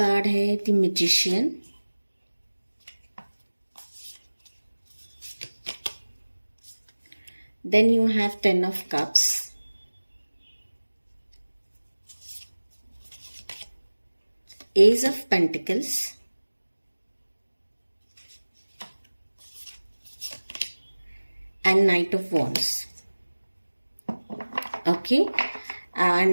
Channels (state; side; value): inverted; both; correlation -1.00